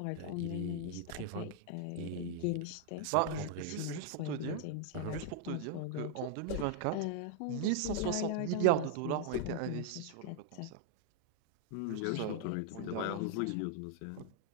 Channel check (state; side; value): different; both; correlation -0.01